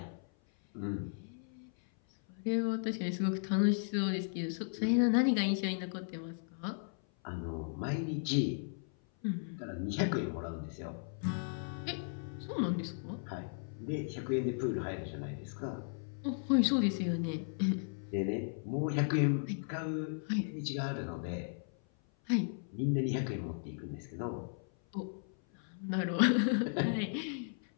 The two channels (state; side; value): silent; right; 54 dB below the other